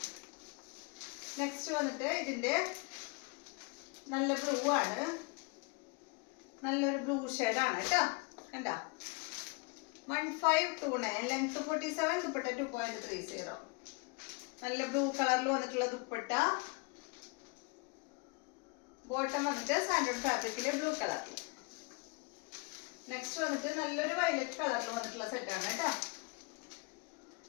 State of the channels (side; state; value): right; quieter; 28.8 dB